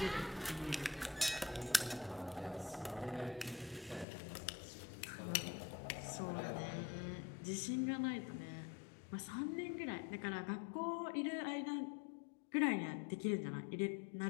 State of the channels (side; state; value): right; drops out; at 4.0 s